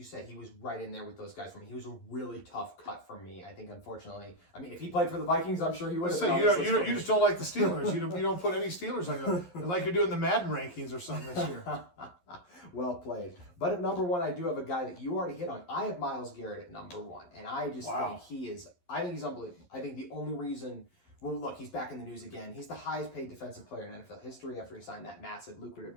said, he was right in there with those guys for me. He was a really tough cut for me. I think, unfortunately, if he played for the Vikings, I'm sure he would have. So you just don't like the Steelers. You don't put any Steelers like you're doing the Madden rankings or something this year. Well played. But at number 1, I do have a guy that you already hit on. I have Myles Garrett at number 1, and I just think he's unbelievable. I think the only reason. Well, look, he's back in the news again. He's the highest paid defensive player in NFL history after he signed that massive, lucrative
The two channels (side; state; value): right; late; 11 ms